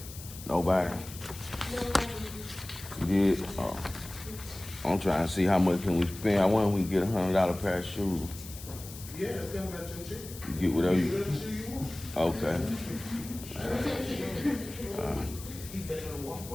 Nobody. You did? Oh. I'm trying to see how much can we spend. I wonder if we can get $100 pair of shoes. Yeah, it's coming out your check. You get whatever you. Whatever shoe you want. Okay.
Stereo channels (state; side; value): noise; left; hiss, 14 dB below the sound